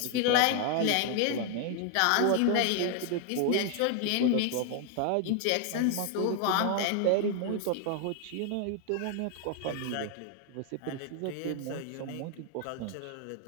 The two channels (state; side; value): different; both; correlation 0.00